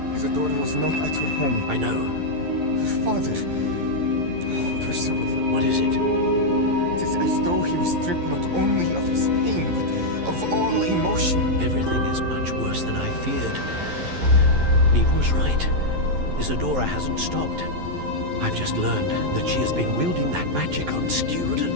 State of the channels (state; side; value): late; left; 11 ms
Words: Isadora was not at her home. I know. Her father. Oh, Percival. What is it? It is as though he was stripped not only of his pain, but of all emotion. Everything is much worse than I feared. Neve was right. Isadora hasn't stopped. I've just learned that she has been wielding that magic on